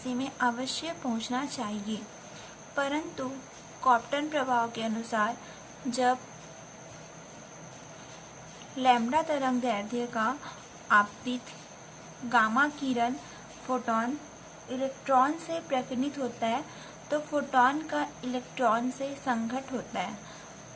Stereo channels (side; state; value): both; identical; correlation 1.00